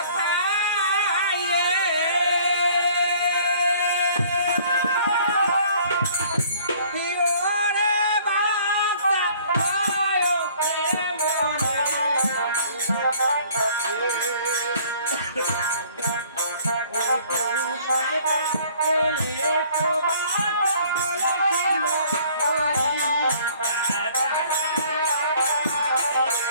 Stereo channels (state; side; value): inverted; both; correlation -0.55